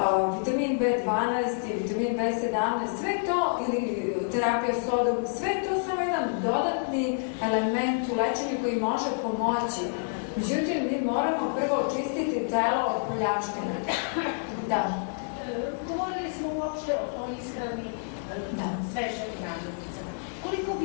vitamin B12 i vitamin B17, sve to, ili terapija sodom, sve to samo jedan dodatni element u lečenju koji može pomoći. Međutim, mi moramo prvo očistiti telo od poljavštine. Da. Govorili smo uopšte o ishrani svežeg namirnicama. Koliko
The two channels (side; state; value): right; silent; digital silence